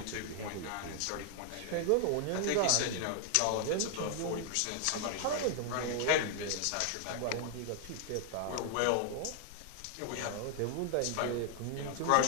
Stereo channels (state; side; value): different; both; correlation 0.00